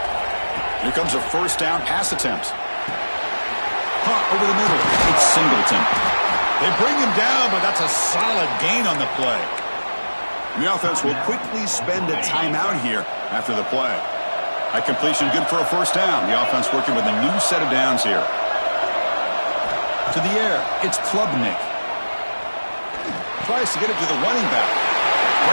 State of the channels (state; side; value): inverted; both; correlation -1.00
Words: Here comes a 1st down pass attempt. Punt over the middle. It's Singleton. They bring him down, but that's a solid gain on the play. The offense will quickly spend a timeout here after the play. That completion good for a 1st down. The offense working with a new set of downs here. To the air, it's Klubnik. Tries to get it to the running back.